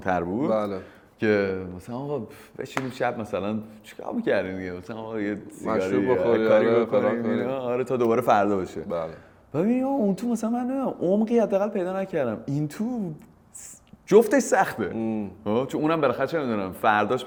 بود. بله. که مثلا آقا بشینیم شب مثلا چیکار می‌کردیم دیگه، مثلا آقا یه سیگاری بخوری کاری بکنیم آره تا دوباره فردا بشه. بله. ببین اون تو مثلا من عمقی حداقل پیدا نکردم، این تو جفتش سخته. چون اونم بالاخره چه میدونم فرداش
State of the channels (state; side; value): identical; both; correlation 1.00